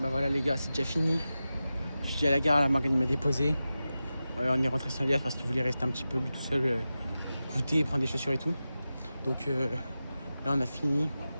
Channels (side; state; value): both; inverted; correlation -0.93